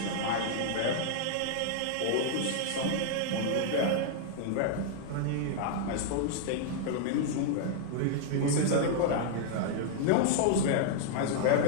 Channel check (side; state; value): both; different; correlation -0.01